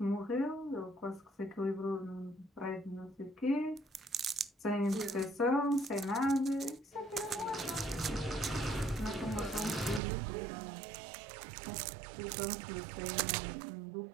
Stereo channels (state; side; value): drops out; left; at 10.0 s